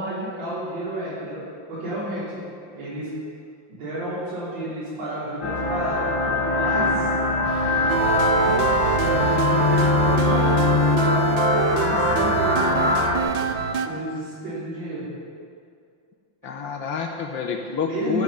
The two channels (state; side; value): late; left; 5.8 ms